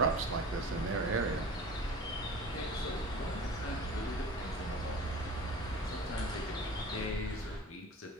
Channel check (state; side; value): normal; both; correlation 0.39